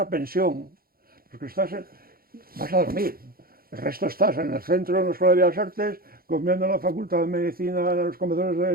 pensión, los que vas a dormir. El resto estás en el centro, en la Escuela de Bellas Artes, comiendo en la Facultad de Medicina, en los comedores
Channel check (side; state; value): left; late; 0.43 ms